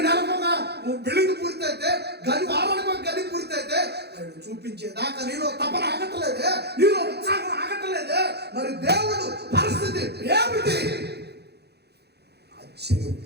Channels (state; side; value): late; left; 0.48 ms